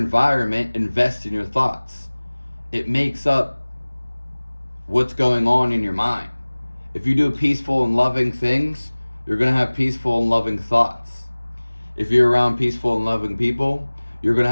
invests in your thoughts. It makes up what's going on in your mind. If you do peaceful and loving things, you're going to have peaceful and loving thoughts. If you're around peaceful and loving people, you're going to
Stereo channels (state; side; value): inverted; both; correlation -1.00